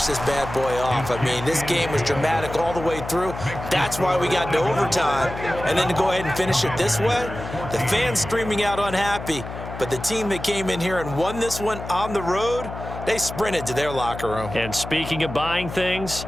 this bad boy off. I mean, this game was dramatic all the way through. That's why we got to overtime. And then to go ahead and finish it this way, the fans streaming out unhappy. But the team that came in here and won this one on the road, they sprinted to their locker room. And speaking of buying things,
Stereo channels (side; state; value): left; noise; hum, 10 dB below the sound